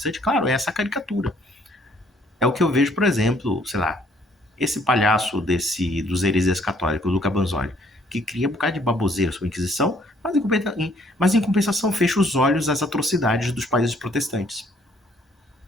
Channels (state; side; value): normal; both; correlation 0.63